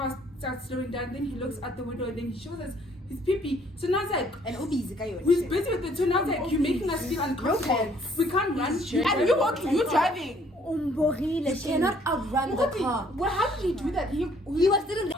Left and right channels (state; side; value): normal; both; correlation 0.62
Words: starts slowing down. Then he looks out the window, and then he shows us his pee. So now it's And Obi's guy. we're busy with it. So now it's you're making us feel uncomfortable. We can't run. And you're walking, you're driving. You cannot outrun the car. Well, how did he do that? He was still in the.